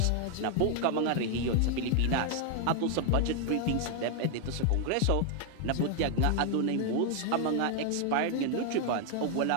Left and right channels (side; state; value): both; different; correlation 0.00